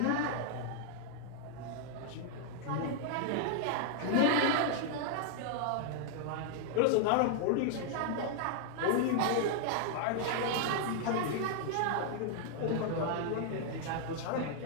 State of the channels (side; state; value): both; different; correlation -0.01